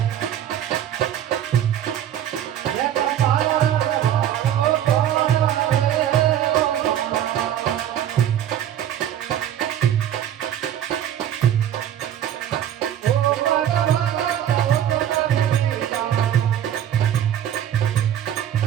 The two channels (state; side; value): quieter; left; 10.7 dB